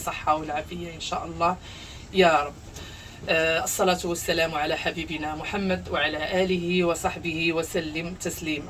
والعافية ان شاء الله يا رب. الصلاة والسلام على حبيبنا محمد وعلى آله وصحبه وسلم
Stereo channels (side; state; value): both; identical; correlation 1.00